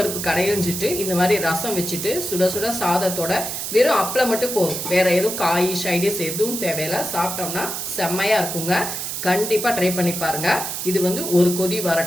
கடையிஞ்சிட்டு இந்த மாதிரி ரசம் வச்சுட்டு சுட சுட சாதத்தோட வெறும் அப்பளம் மட்டும் போதும், வேற எதுவும் காய் சைடிஸ் எதுவும் தேவையில்லை, சாப்பிட்டோம்னா செம்மையாக இருக்குங்க. கண்டிப்பாக ட்ரை பண்ணி பாருங்க. இது ஒரு கொதி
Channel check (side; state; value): right; noise; hiss, 4 dB below the sound